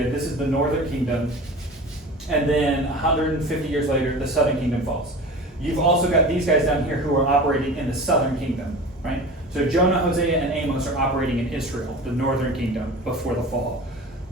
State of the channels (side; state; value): both; normal; correlation 0.36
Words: This is the northern kingdom. And then 150 years later, the southern kingdom falls. You've also got these guys down here who are operating in the southern kingdom, right? So Jonah, Hosea, and Amos are operating in Israel, the northern kingdom, before the fall.